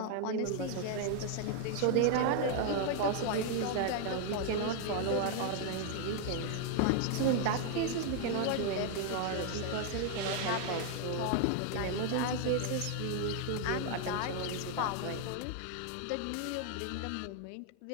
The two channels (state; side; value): different; both; correlation 0.00